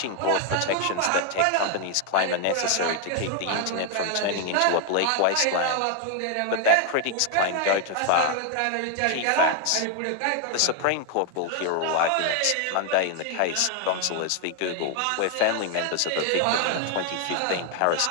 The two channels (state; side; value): different; both; correlation 0.01